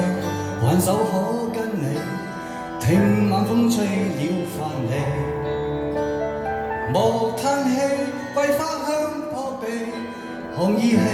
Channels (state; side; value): identical; both; correlation 1.00